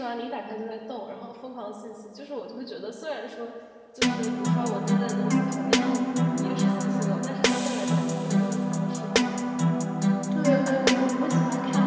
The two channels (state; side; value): identical; both; correlation 1.00